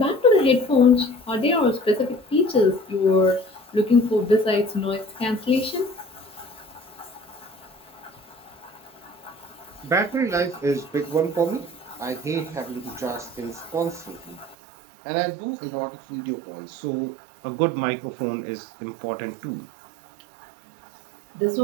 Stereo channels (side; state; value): left; drops out; at 14.6 s